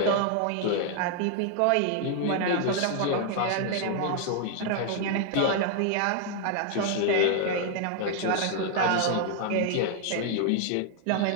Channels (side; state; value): both; different; correlation 0.00